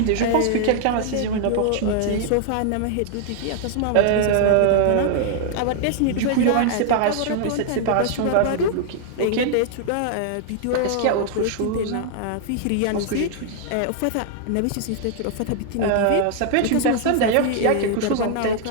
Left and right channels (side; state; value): both; different; correlation 0.00